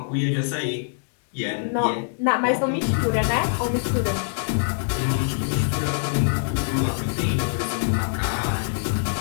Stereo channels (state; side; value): silent; right; digital silence